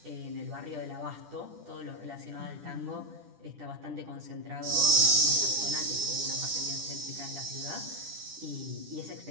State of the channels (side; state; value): left; late; 10 ms